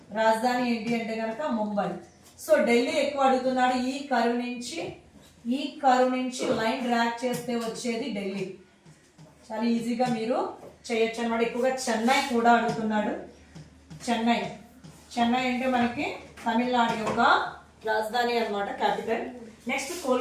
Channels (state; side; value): identical; both; correlation 1.00